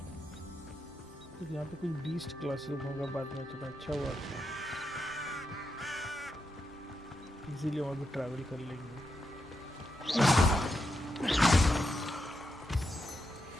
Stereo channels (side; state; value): both; normal; correlation 0.84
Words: तो यहाँ पे कोई बीस्ट क्लासरूम होगा बाद में, तो अच्छा हुआ इजीली वहाँ पे ट्रैवल कर लेंगे।